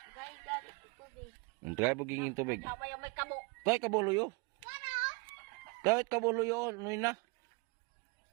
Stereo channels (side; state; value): left; quieter; 29.2 dB